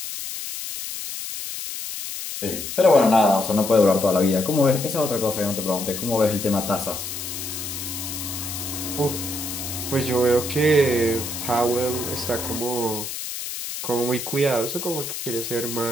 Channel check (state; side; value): noise; left; hiss, 6 dB below the sound